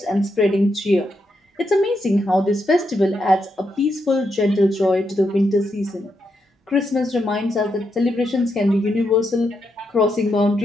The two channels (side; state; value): both; normal; correlation 0.82